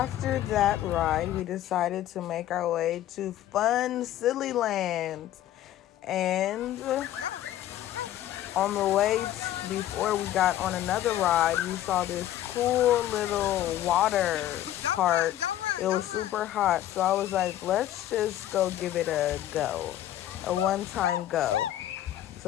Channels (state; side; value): quieter; right; 12.9 dB